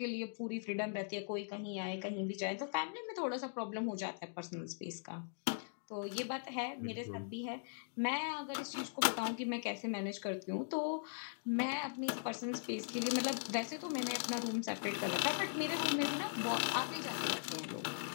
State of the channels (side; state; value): right; silent; digital silence